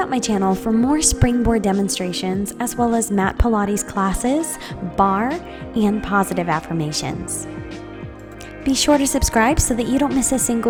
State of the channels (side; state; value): both; identical; correlation 1.00